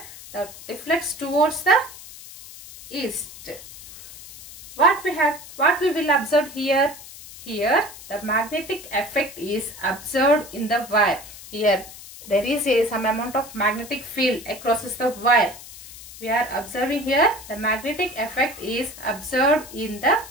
the deflects towards the east. What we will observe here? Here the magnetic effect is observed in the wire. Here there is some amount of magnetic field across the wire. We are observing here the magnetic effect is observed in the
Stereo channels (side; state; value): left; noise; hiss, 16 dB below the sound